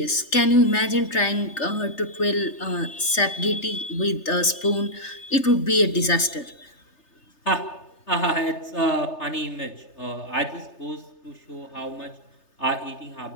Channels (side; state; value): right; late; 3.3 ms